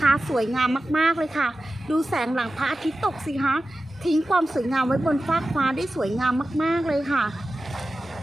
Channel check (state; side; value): normal; both; correlation 0.94